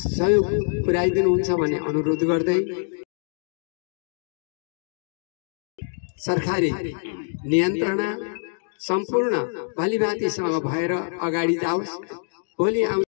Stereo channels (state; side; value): silent; right; digital silence